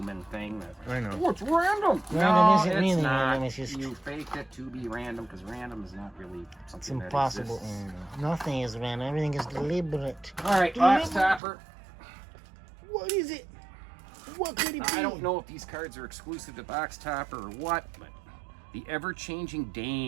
thing that, I know. oh, it's random. Random No, isn't it's really not. random, it's just- You faked it to be random, because random is not really something It's that impossible. exists. Nothing is random. Everything is deliberate. All right, box topper. What is it? What could it be? I don't know if these cards are exclusive to box topper or what, but the ever-changing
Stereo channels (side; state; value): left; drops out; at 11.4 s